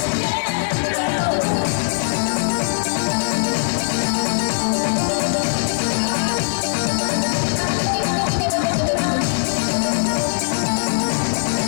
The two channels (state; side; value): silent; right; digital silence